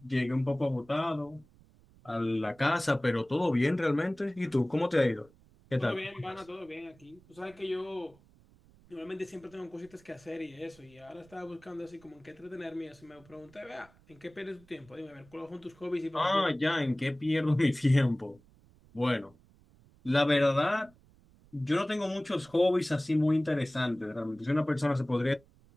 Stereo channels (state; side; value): noise; right; rumble, 28 dB below the sound